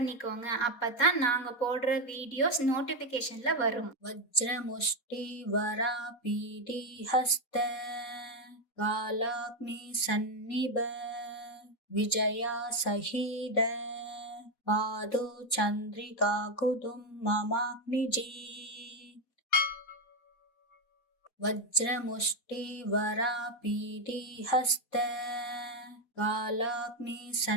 அப்பதான் நாங்க போடுற வீடியோஸ் நோட்டிஃபிகேஷன்ல வரும். वज्रमुष्टि वरापीडी हस्त कालाग्नि सन्निभ विजया सहीद पादो चंद्रिका कुदुम ममाग्निजी वज्रमुष्टि वरापीडी हस्त कालाग्नि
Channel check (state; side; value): late; right; 4.2 ms